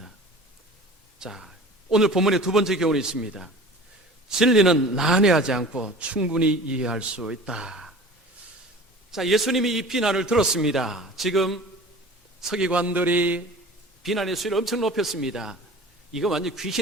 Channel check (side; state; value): both; normal; correlation 0.41